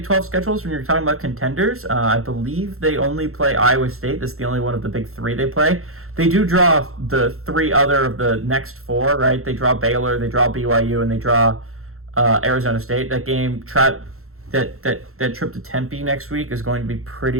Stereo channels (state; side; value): late; left; 0.63 ms